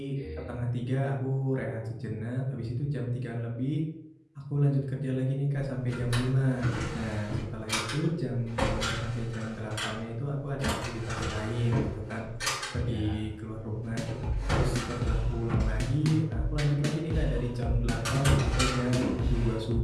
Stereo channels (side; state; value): both; identical; correlation 1.00